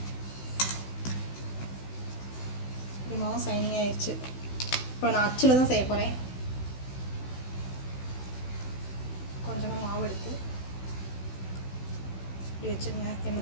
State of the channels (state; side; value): late; right; 16 ms